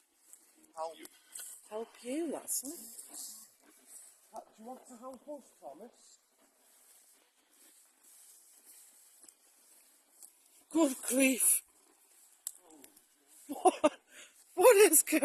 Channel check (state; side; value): identical; both; correlation 1.00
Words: Help you, that's it. Do you want to help us, Thomas? Good grief. What is